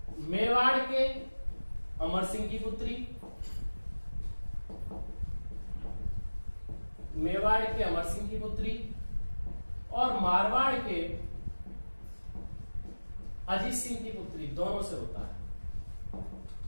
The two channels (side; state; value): both; inverted; correlation -1.00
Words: मेवाड़ के अमर सिंह की पुत्री, मेवाड़ के अमर सिंह की पुत्री और मारवाड़ के अजीत सिंह की पुत्री, दोनों से होता है।